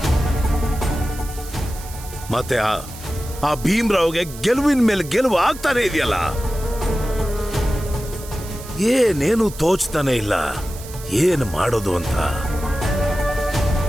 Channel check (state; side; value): noise; right; hiss, 15 dB below the sound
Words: ಮತ್ತೆ ಆ ಭೀಮ್ರಾವ್ಗೆ ಗೆಲುವಿನ ಮೇಲೆ ಗೆಲುವು ಆಗ್ತಾನೆ ಇದೆಯಲ್ಲ. ಏನೇನು ತೋಚ್ತಾನೆ ಇಲ್ಲ, ಏನು ಮಾಡೋದು ಅಂತ.